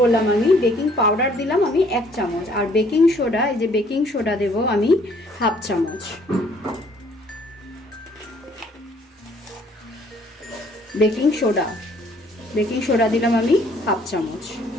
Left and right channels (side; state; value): both; normal; correlation 0.61